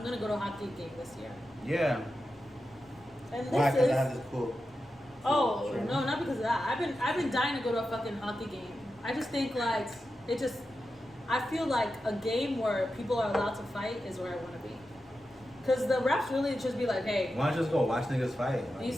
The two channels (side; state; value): both; normal; correlation 0.90